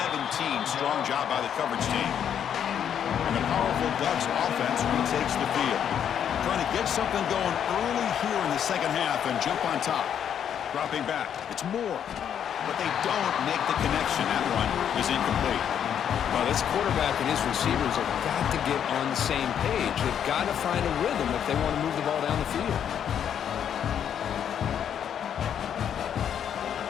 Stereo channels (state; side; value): quieter; right; 8.9 dB